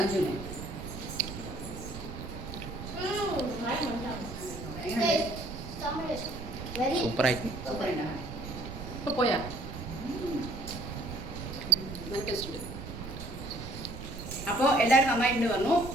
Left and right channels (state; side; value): noise; right; rumble, 9 dB below the sound